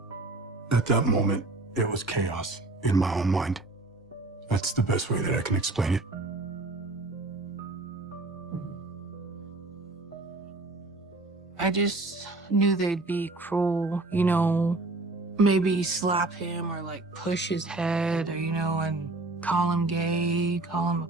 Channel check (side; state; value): left; quieter; 3.0 dB